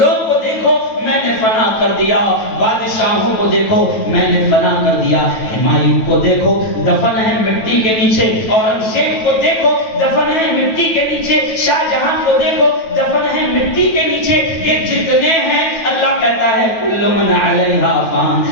کو دیکھو میں نے فنا کر دیا، بادشاہوں کو دیکھو میں نے فنا کر دیا، ہمایوں کو دیکھو دفن ہے مٹی کے نیچے، اورنگزیب کو دیکھو دفن ہے مٹی کے نیچے، شاہ جہاں کو دیکھو دفن ہے مٹی کے نیچے، یہ جتنے ہیں اللہ کہتا ہے کل من علیہا فان،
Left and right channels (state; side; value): late; right; 9.2 ms